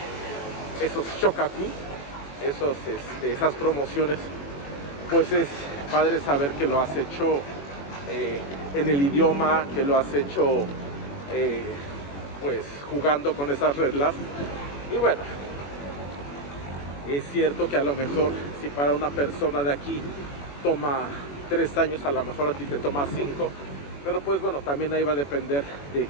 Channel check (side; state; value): right; late; 21 ms